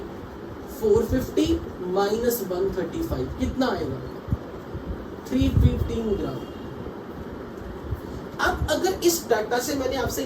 450 minus 135, कितना आएगा? 315 ग्राम। अब अगर इस डाटा से मैंने आपसे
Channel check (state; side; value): identical; both; correlation 1.00